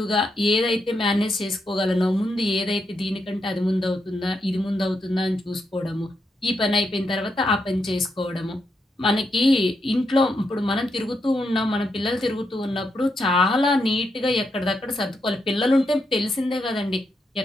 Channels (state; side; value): normal; both; correlation 0.82